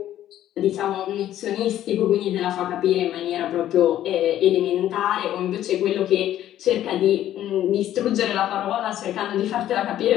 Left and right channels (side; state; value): right; quieter; 12.3 dB